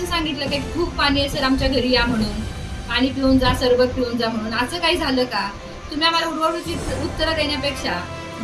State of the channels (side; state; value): both; identical; correlation 1.00